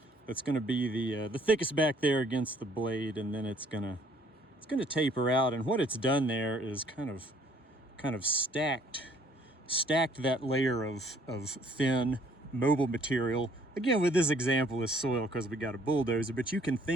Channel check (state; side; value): normal; both; correlation 0.61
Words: that's going to be the thickest back there against the blade, and then it's going to taper out. And what it's done there is kind of stacked that layer of thin mobile material. Again, with this example is soil because we got a bulldozer, but you can